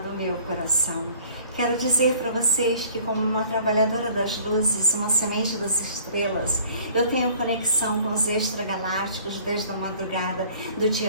meu coração. Quero dizer para vocês que, como uma trabalhadora das luzes, uma semente das estrelas, eu tenho conexão com os extragalácticos desde a madrugada do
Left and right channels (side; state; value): both; inverted; correlation -0.52